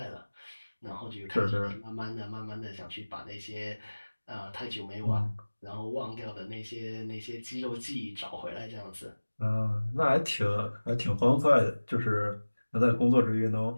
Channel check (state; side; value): inverted; both; correlation -1.00